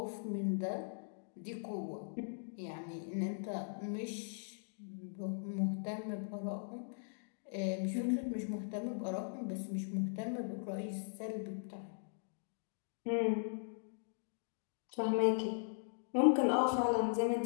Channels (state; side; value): silent; right; digital silence